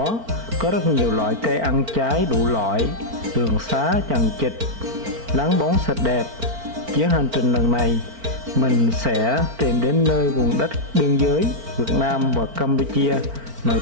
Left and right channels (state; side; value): late; left; 4.4 ms